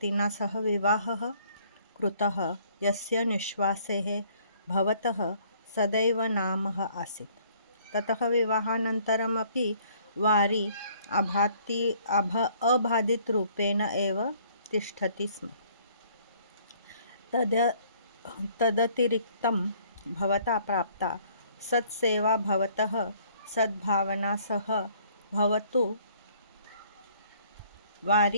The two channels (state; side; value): inverted; both; correlation -0.61